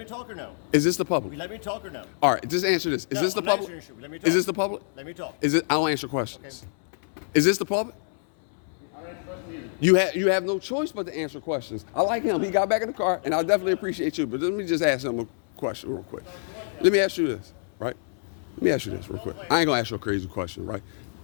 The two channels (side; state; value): right; silent; 61 dB below the other